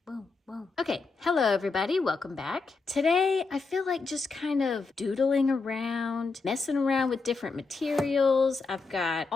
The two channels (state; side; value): quieter; right; 4.2 dB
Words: boom, boom. Okay, hello everybody, welcome back. Today, I feel like just kind of doodling around, messing around with different materials. I've got